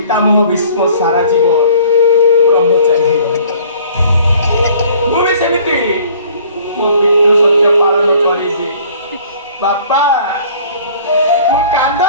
ଭୀଷ୍ମ ସାରା ଜୀବନ ବ୍ରହ୍ମଚାରୀ ରହିଲେ। ମୁଁ ବି ସେମିତି ମୋ ପିତୃ ସତ୍ୟ ପାଳନ କରିବି। ବାପା ମୁଁ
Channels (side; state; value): both; inverted; correlation -0.53